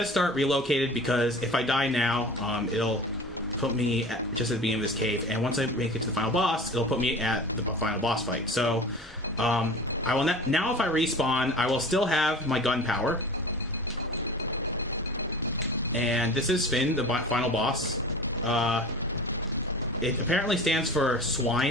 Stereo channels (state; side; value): normal; both; correlation 0.37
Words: start relocated because if I die now, it'll put me just at the beginning of this cave. And once I make it to the final boss, it'll put me at the final boss fight. So, I will now if I respawn, I will still have my gunpowder. And this is Finn, the final boss. It apparently stands for